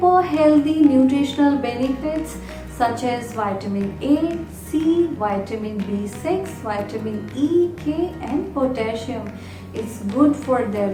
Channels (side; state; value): both; identical; correlation 1.00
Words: healthy nutritional benefits such as vitamin A, C, vitamin B6, vitamin E, K and potassium. It's good for their